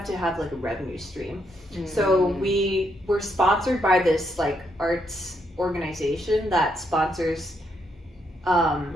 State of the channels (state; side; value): normal; both; correlation 0.77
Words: to have like a revenue stream. So we were sponsored by this like arts organization that sponsors